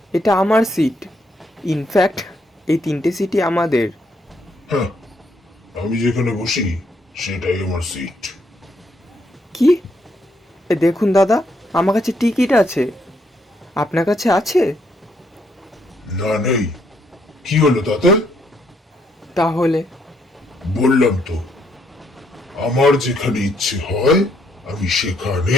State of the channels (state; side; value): normal; both; correlation 0.73